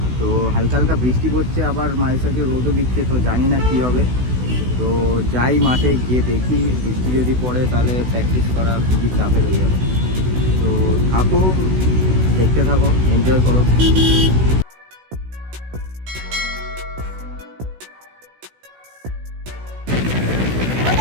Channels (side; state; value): left; late; 16 ms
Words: তো হালকা হালকা বৃষ্টি পড়ছে, আবার মাঝে সাঝে রোদও দিচ্ছে, তো জানি না কী হবে। তো যাই মাঠে গিয়ে দেখি, বৃষ্টি যদি পড়ে তাহলে প্র্যাকটিস করা খুবই চাপের হয়ে যাবে। তো থাকো, দেখতে থাকো, এনজয় করো।